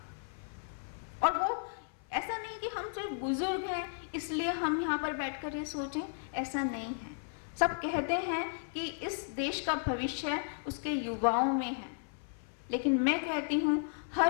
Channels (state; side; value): silent; right; 55 dB below the other